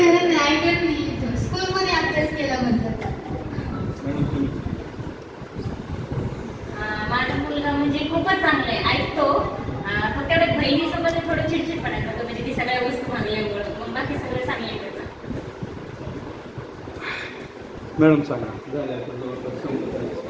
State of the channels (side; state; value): both; identical; correlation 1.00